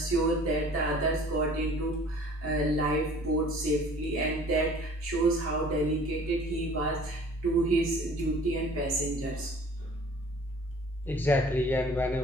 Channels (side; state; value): both; normal; correlation 0.50